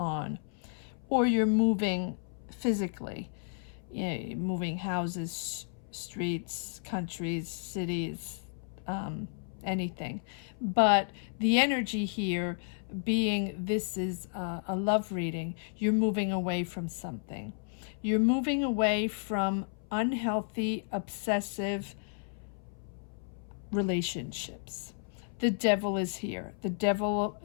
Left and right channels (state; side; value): silent; right; 56 dB below the other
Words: or you're moving physically, moving houses, streets, countries, cities, anything. But the energy here being this is a love reading, you're moving away from something. You're moving away from unhealthy, obsessive relationships. The Devil is here. The Devil